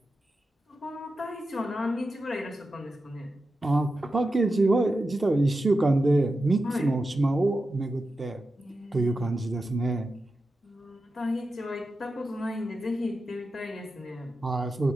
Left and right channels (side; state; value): both; normal; correlation 0.91